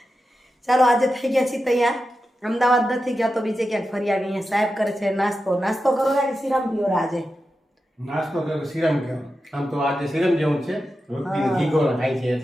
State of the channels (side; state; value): both; normal; correlation 0.91